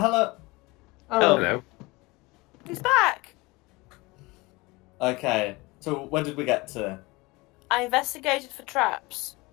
Oh, Hello. He's back. Okay, so where did we get to? I investigated for traps.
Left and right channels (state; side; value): quieter; right; 23.4 dB